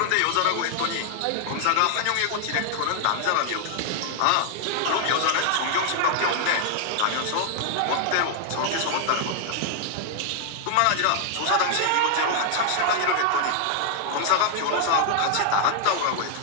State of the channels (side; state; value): both; different; correlation 0.00